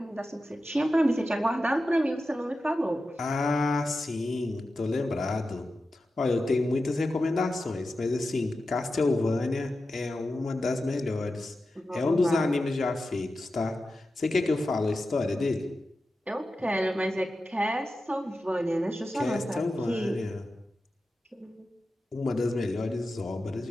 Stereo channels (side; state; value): both; normal; correlation 0.92